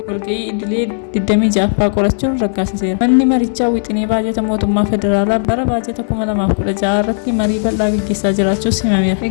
walga'ii idilee 26ffaa qorachuun raggaasiseera. Manni marichaa wixinee baajata mootummaa federaalaa bara baajata 2016 irratti marii bal'aa gaggeessaa jiraachuus himameera.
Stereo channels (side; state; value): right; silent; digital silence